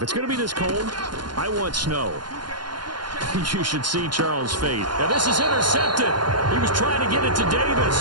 it's going to be this cold, I want snow. You should see Charles' fate. Now this is intercepted. He was trying to get it to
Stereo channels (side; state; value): left; late; 0.71 ms